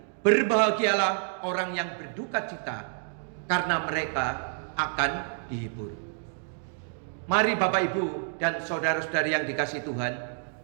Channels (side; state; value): left; silent; digital silence